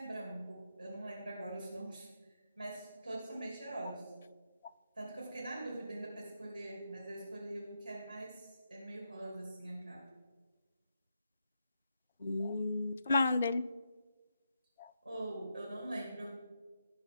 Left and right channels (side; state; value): both; inverted; correlation -0.84